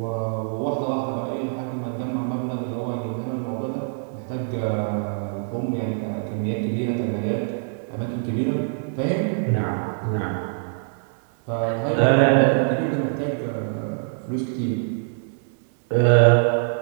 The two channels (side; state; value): left; silent; digital silence